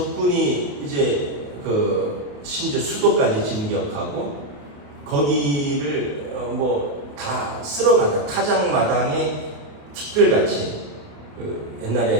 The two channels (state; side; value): late; left; 28 ms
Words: 이제 심지어 수도까지 진격하고 거기를 뭐 다 쓸어간다. 타작마당에 티끌같이,